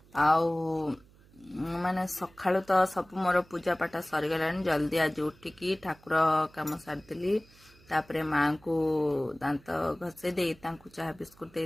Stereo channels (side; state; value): right; noise; hum, 27 dB below the sound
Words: आउ माने सकाळु तो सब मोर पूजा पाठ सरी गलानी जल्दी आज उठिकी ठाकुर काम सारदेली तापरे माँ को दांत घसे दे चाह बिस्कुट